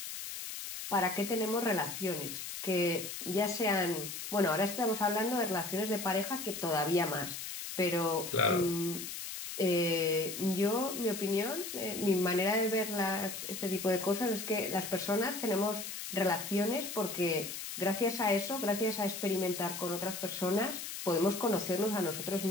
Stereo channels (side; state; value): left; noise; hiss, 7 dB below the sound